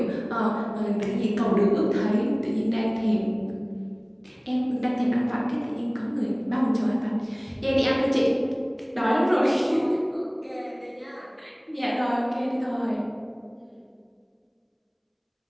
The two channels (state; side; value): identical; both; correlation 1.00